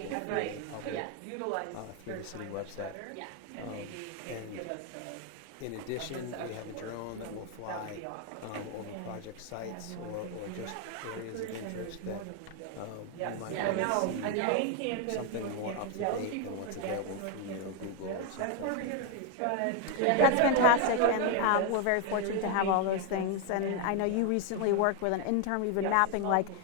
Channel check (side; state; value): both; different; correlation 0.01